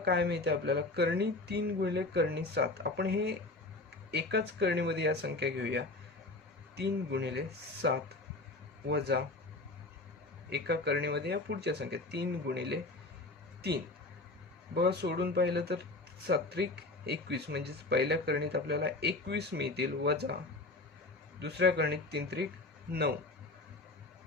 मिळते आपल्याला, कर्णी 3 गुणिले कर्णी 7। आपण हे एकाच करणीमध्ये या संख्या घेऊया, 3 गुणिले 7 वजा एका करणीमध्ये या पुढच्या संख्या 3 गुणिले 3। बघा, सोडून पाहिलं तर 7 21 म्हणजेच पहिल्या करणीत आपल्याला 21 मिळतील, वजा दुसऱ्या करणीत 3 9।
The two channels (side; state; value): right; quieter; 3.0 dB